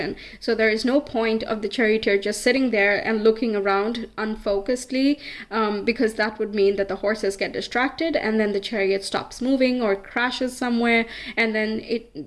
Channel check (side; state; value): both; identical; correlation 1.00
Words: So there is no point of the charioteer just sitting there and looking around unfocusedly, because that would mean that the horses get distracted and then the chariot stops moving or crashes somewhere, and then